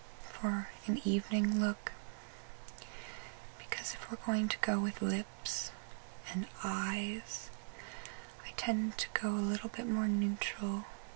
for an evening look, because if we're going to go with lips and eyes, I tend to go a little bit more neutral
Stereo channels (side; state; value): left; silent; 51 dB below the other